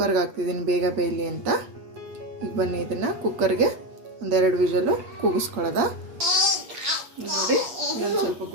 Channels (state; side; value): late; left; 8.4 ms